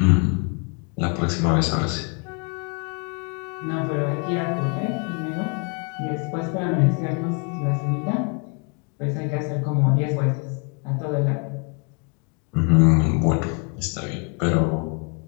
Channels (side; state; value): right; quieter; 37.2 dB